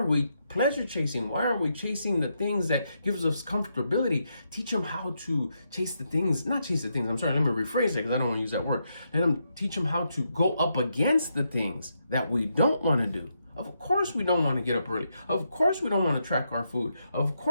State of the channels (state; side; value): inverted; both; correlation -0.81